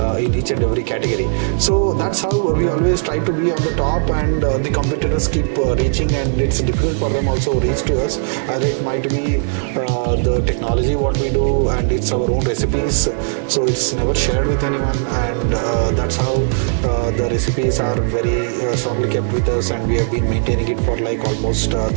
in each and every category. So that's how we always try to be on the top, and the competitors keep reaching, and it's difficult for them also reach to us, as it might be the technology what we do, and it's our own recipes, so it's never shared with anyone, and that's how the recipes are very strongly kept with us, and we have been maintaining it for like almost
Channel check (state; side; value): silent; left; digital silence